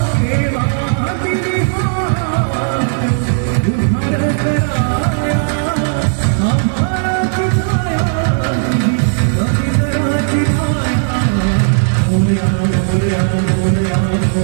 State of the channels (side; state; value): left; silent; 66 dB below the other